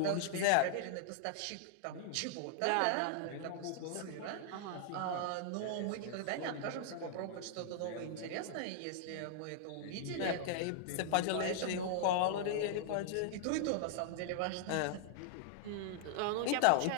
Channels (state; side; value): different; both; correlation -0.01